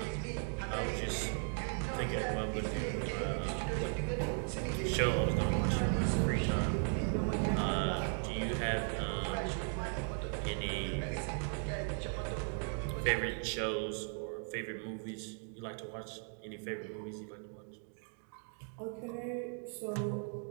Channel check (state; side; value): silent; left; 53 dB below the other